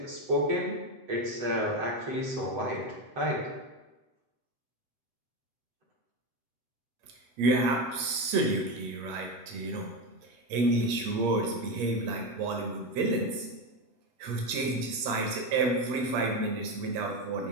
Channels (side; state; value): left; late; 8.5 ms